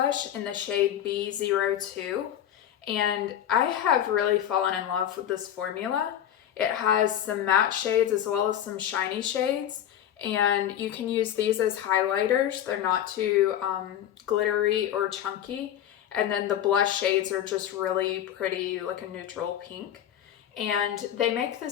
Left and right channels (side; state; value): right; quieter; 10.7 dB